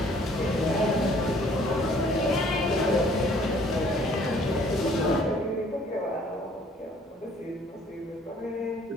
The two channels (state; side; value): normal; both; correlation 0.58